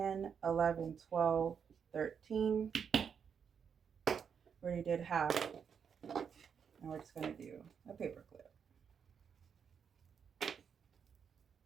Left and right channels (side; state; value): left; quieter; 7.0 dB